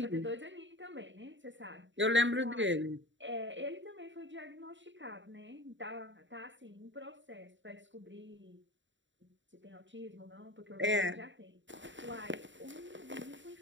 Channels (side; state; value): left; late; 0.54 ms